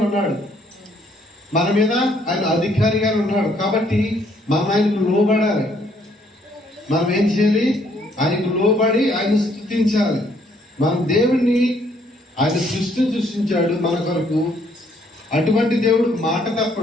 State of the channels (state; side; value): normal; both; correlation 0.67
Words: ఉన్నాడు. మన మీద ఆయన అధికారిగా ఉన్నాడు. కాబట్టి మనం ఆయనకు లోబడాలి. మనం ఏం చేయాలి? ఆయనకు లోబడి ఆయన స్తుతించాలి. మనం దేవుణ్ణి, ఆయన సృష్టించాడు మన కొరకు. అటువంటి దేవుడు మాట